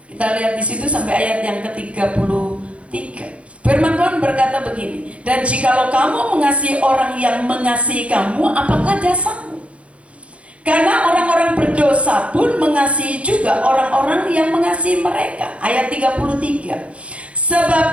Kita Kita lihat di situ sampai ayat yang ke-33. Firman Tuhan berkata begini, dan jikalau kamu mengasihi orang yang mengasihi kamu, apakah jasamu? Karena orang-orang berdosa pun mengasihi juga orang-orang yang mengasihi mereka. Ayat 33.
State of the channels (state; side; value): late; left; 0.062 ms